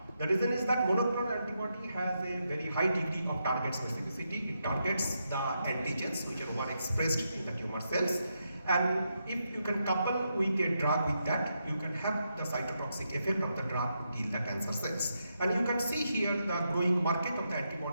The reason is that monoclonal antibody has a very high degree of target specificity. It targets the antigens which are overexpressed in the tumor cells. And if you can couple with a drug with that, you can have the cytotoxic effect of the drug to kill the cancer cells. And you can see here the growing market of the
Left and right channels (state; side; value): inverted; both; correlation -0.83